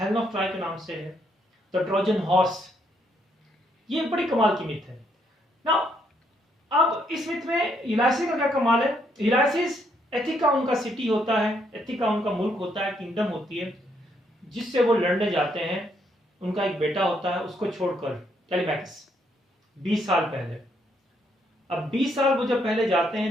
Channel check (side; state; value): both; normal; correlation 0.73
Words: ऑफ ट्रॉय के नाम से है, द ट्रोजन हॉर्स. ये बड़ी कमाल की मिथ है. नाउ अब इस मिथ में यूलाइसिस का क्या कमाल है. यूलाइसिस एथिका उनका सिटी होता है, एथिका उनका मुल्क होता है, किंगडम होती है, जिससे वो लड़ने जाते हैं. उनका एक बेटा होता है, उसको छोड़कर टेलीमैक्स 20 साल पहले. अब 20 साल वो जब पहले जाते